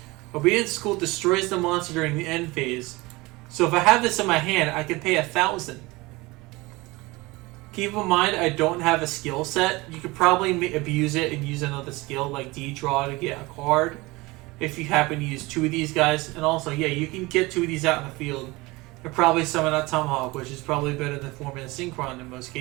Obedience School destroys the monster during the end phase. So if I have this in my hand, I can pay 1,000. Keep in mind, I don't have a skill set. You could probably abuse it and use another skill like D-Draw to get a card. If you happen to use 2 of these guys. And also, yeah, you can get 2 of these out in the field. And probably summon out Tomahawk, which is probably better than Formula Synchron in most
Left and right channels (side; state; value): left; quieter; 22.5 dB